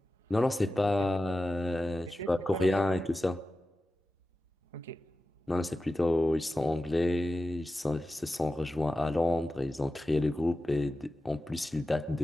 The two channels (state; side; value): normal; both; correlation 0.94